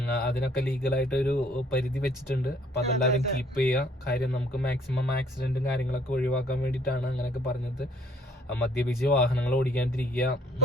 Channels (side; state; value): both; normal; correlation 0.62